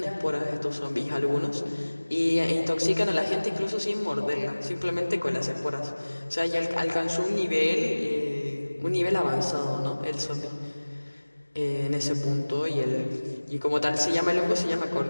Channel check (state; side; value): inverted; both; correlation -1.00